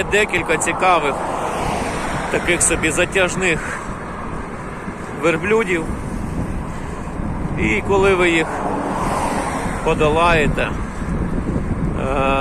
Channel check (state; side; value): identical; both; correlation 1.00